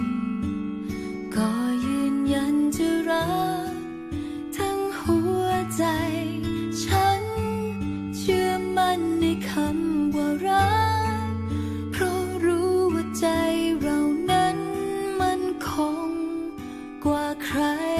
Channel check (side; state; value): both; identical; correlation 1.00